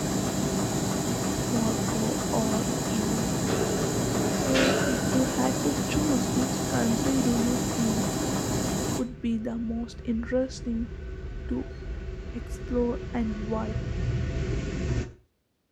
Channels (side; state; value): both; identical; correlation 1.00